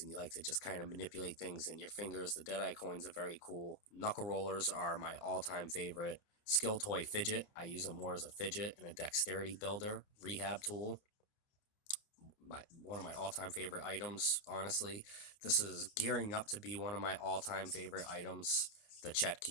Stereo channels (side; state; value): right; late; 29 ms